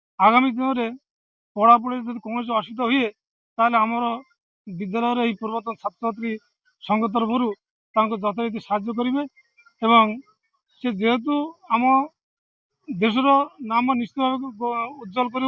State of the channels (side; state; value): both; identical; correlation 1.00